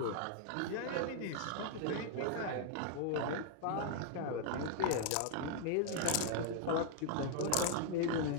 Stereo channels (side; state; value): both; different; correlation 0.00